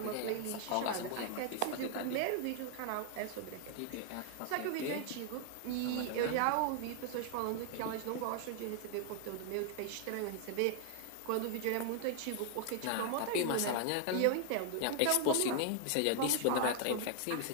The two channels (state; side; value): different; both; correlation 0.00